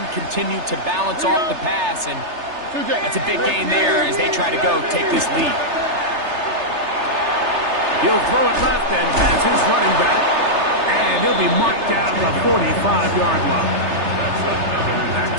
continue to balance off the pass? And that's a big gain there as they try to go take this lead. He'll throw it left and has his running back. And he'll be marked down at the 45-yard line. Back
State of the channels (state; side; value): late; left; 3.3 ms